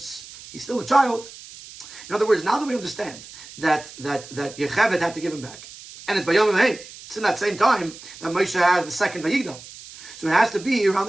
He's still a child. In other words, now that we understand that Yechevet had to give him back, and it's by Yom Hey, it's in that same time that Moshe has the second Vayigdal. So it has to be around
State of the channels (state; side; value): noise; right; hiss, 17 dB below the sound